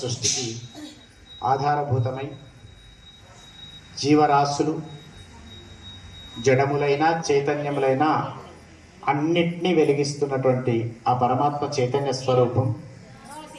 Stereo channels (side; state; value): both; identical; correlation 1.00